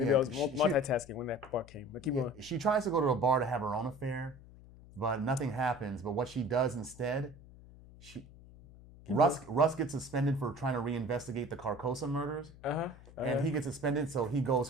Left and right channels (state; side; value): noise; left; hum, 20 dB below the sound